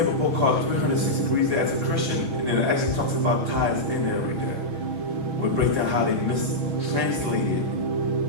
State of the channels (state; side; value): late; left; 6.3 ms